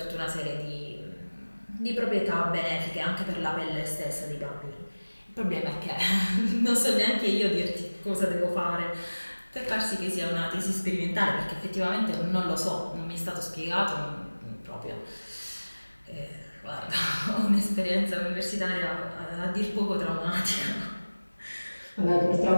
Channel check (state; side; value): inverted; both; correlation -1.00